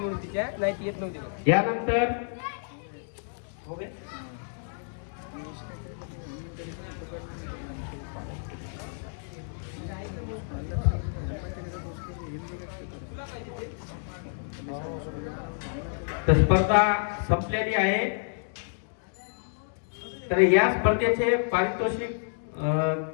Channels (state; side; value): silent; right; digital silence